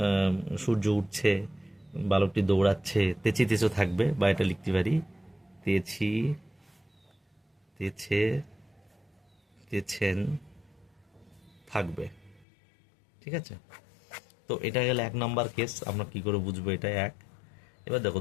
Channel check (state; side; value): drops out; right; at 12.5 s